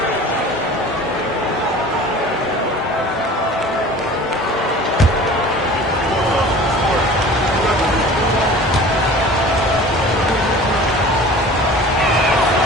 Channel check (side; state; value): both; normal; correlation 0.42